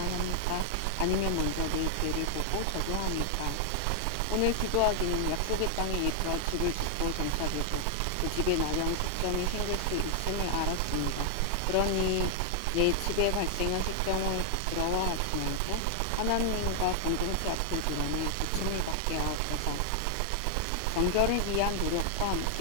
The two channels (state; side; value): different; both; correlation 0.00